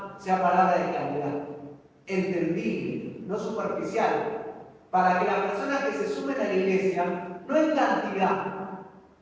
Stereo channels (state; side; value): identical; both; correlation 1.00